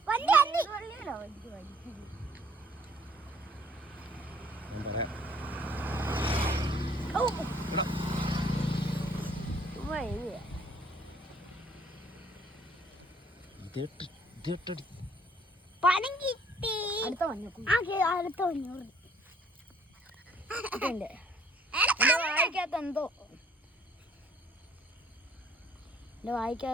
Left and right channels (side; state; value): both; normal; correlation 0.60